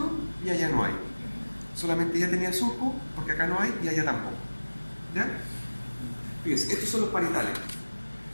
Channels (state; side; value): inverted; both; correlation -1.00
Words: y allá no hay. Solamente ella tenía surco, porque acá no hay y allá tampoco. ¿Ya? Fíjense, estos son los parietales.